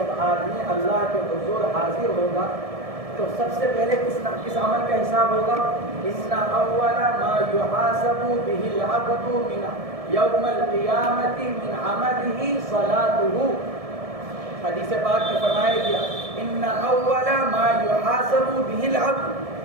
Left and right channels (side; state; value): left; late; 1.7 ms